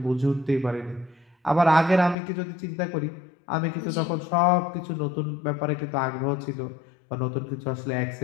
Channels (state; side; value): drops out; right; at 2.1 s